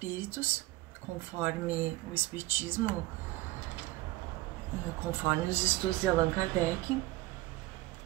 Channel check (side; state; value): left; quieter; 18.9 dB